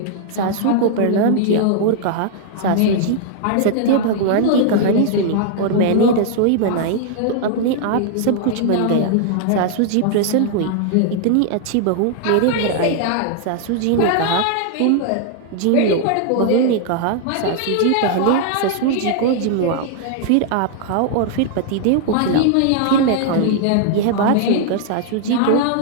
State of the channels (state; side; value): different; both; correlation 0.00